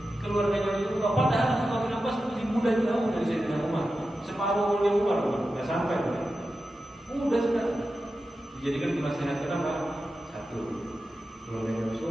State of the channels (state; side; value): normal; both; correlation 0.92